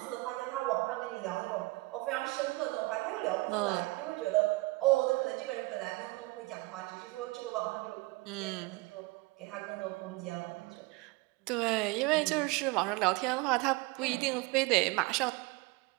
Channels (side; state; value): left; quieter; 23.3 dB